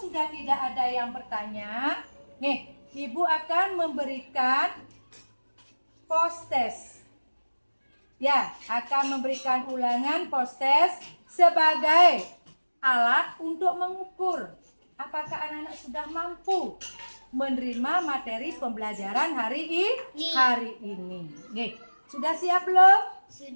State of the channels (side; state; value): both; inverted; correlation -1.00